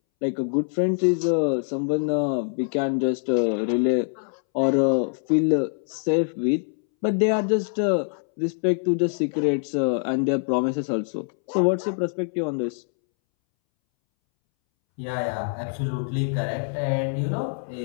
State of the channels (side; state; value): right; silent; 62 dB below the other